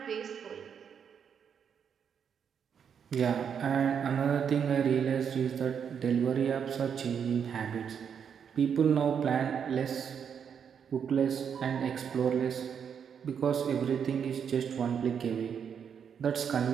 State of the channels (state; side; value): quieter; left; 7.5 dB